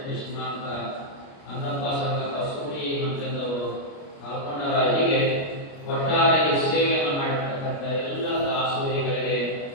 ಅಂತ ಅಂದಪ್ಪ ಸಂಗಪ್ಪ ಸೂರಿ ಮಂತ್ರಿದವರು ಕಾಲ್ಕೊಂಡರ. ಹೀಗೆ ಒಟ್ಟಾರೆ ಸೇವೆಯನ್ನು ಮಾಡಿರ್ತಕ್ಕಂಥ ಎಲ್ಲ ದಾಸೋಹಿಗಳಿಗೆ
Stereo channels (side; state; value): right; late; 29 ms